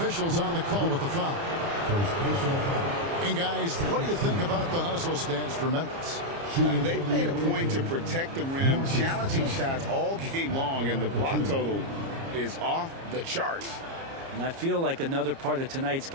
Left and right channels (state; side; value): late; left; 30 ms